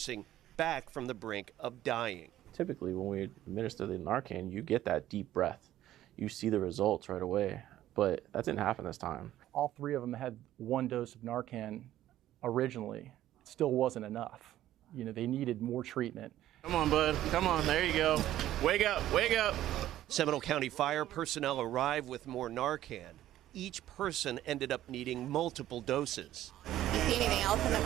back from the brink of dying. Typically, when we administer the Narcan, you get that deep breath. You see the results right away, but that didn't happen this time. All 3 of them had 1 dose of Narcan originally. It still wasn't enough. You know, they needed more treatment. Come on, bud. Come on. There you go. Wake up. Wake up. Seminole County fire personnel arrived with more Narcan. Each person ended up needing multiple doses. You see anything else in the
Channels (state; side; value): quieter; left; 13.3 dB